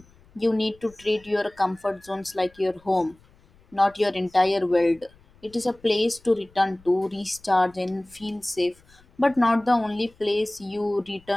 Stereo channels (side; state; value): left; noise; rumble, 29 dB below the sound